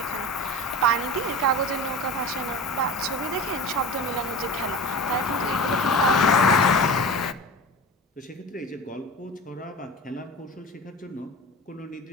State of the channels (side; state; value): both; normal; correlation 0.33